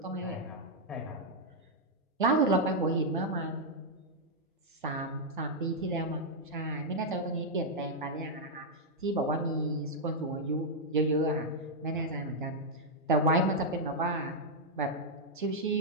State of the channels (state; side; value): normal; both; correlation -0.04